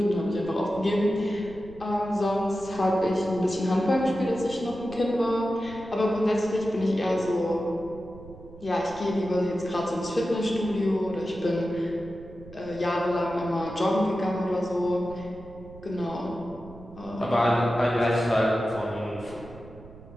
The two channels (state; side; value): noise; right; rumble, 19 dB below the sound